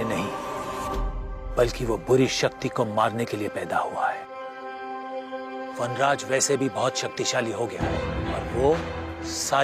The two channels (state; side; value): identical; both; correlation 1.00